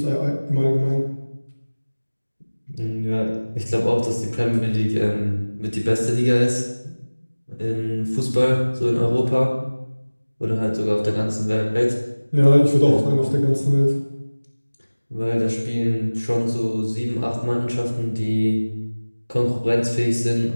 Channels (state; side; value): inverted; both; correlation -1.00